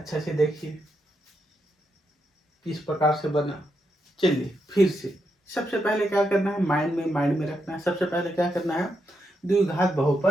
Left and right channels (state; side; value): normal; both; correlation 0.82